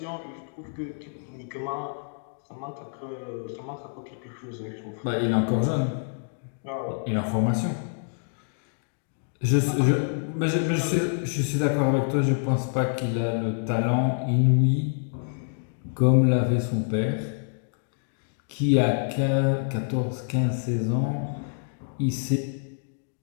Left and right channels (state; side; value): silent; right; digital silence